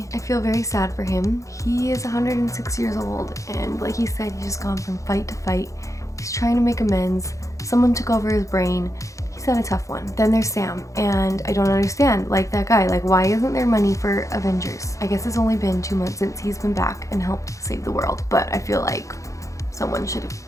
I feel very sad for him. He is 106 years old, and like he said, he's just gone from fight to fight. He's trying to make amends. Someone took over his brain. He's had a tough one. Then there's Sam, and I don't understand, like that guy, like why isn't there money for Avengers? I guess it's only been 2 months since he's been back and helped save the world, but I feel like someone should have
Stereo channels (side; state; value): right; late; 0.15 ms